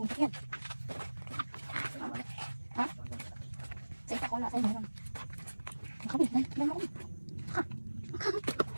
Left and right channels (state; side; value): inverted; both; correlation -1.00